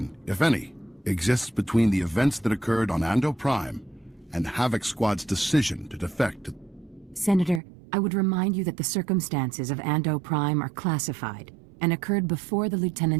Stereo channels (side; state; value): left; drops out; at 7.6 s